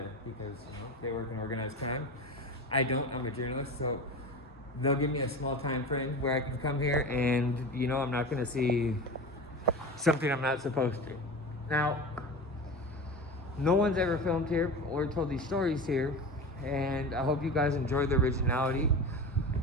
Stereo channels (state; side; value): normal; both; correlation 0.29